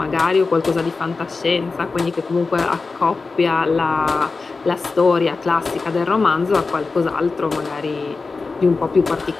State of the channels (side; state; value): right; quieter; 4.1 dB